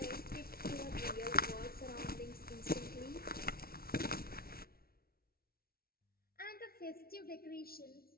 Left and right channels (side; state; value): right; late; 0.44 ms